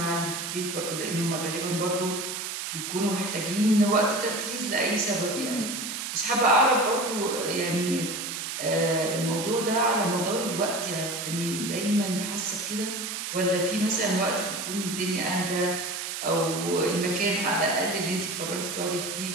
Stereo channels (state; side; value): noise; right; hiss, 5 dB below the sound